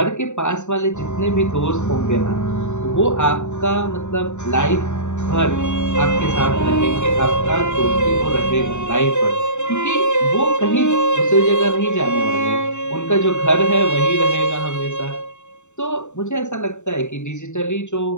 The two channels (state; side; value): late; right; 0.84 ms